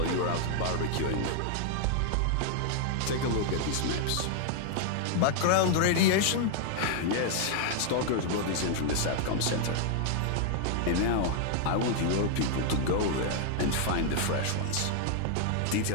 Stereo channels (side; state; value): both; different; correlation 0.00